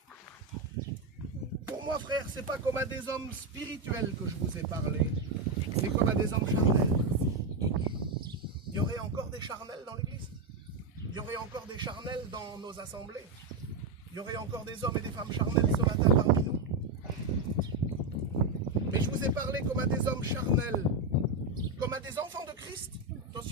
Pour moi, frère, ce n'est pas comme à des hommes spirituels que je vous ai parlé, mais comme à des hommes charnels. Il y aurait encore des charnels dans l'église. Il y aurait encore des charnels dans nos assemblées. Il y aurait encore des hommes et des femmes charnels ce matin parmi nous. Mais je vous ai parlé comme à des hommes charnels, comme à des enfants de Christ.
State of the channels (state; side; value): quieter; left; 3.3 dB